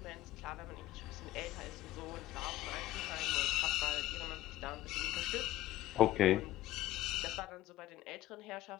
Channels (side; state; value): right; quieter; 15.4 dB